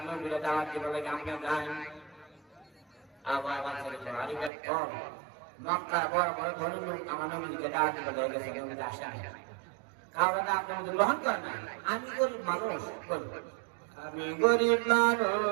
নবীরে দাওয়াত দিতে বলে আমরা যাই। আবার আরিফের কম মক্কা বড় বড় ধনী লোক আমার নবীকে দাওয়াত দিতে বলে গেছে নবীতে আসে কারণ আপনি গ্রহণ করেন না। আমি গরিব মানুষ আমি গরিব মানুষ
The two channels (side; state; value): left; drops out; at 4.5 s